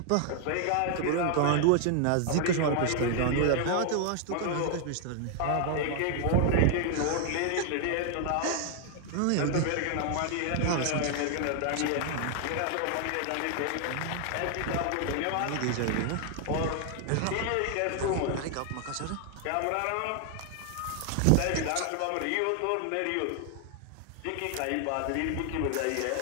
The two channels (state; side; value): different; both; correlation 0.00